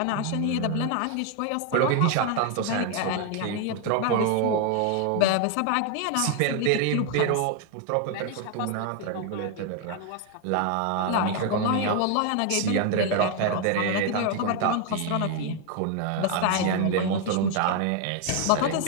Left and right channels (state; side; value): different; both; correlation 0.01